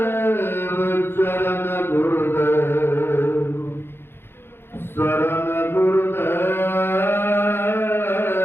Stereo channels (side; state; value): right; late; 0.11 ms